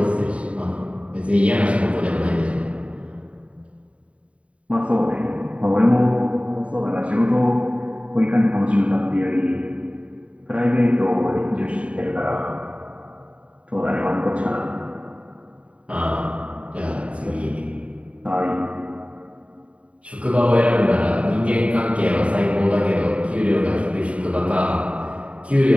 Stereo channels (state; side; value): late; left; 0.064 ms